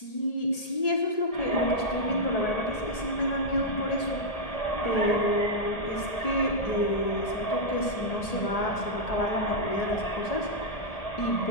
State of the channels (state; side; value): late; right; 1.8 ms